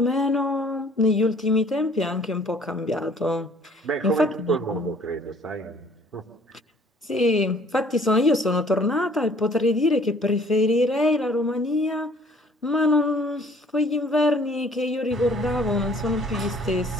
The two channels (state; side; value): normal; both; correlation 0.56